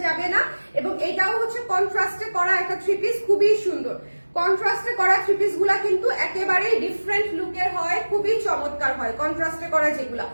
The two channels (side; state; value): both; inverted; correlation -1.00